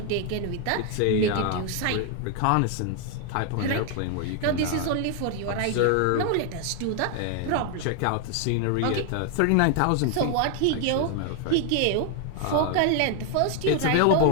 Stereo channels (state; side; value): different; both; correlation 0.00